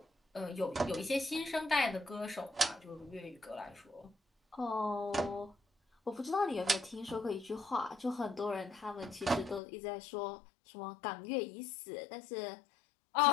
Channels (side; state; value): right; drops out; at 9.6 s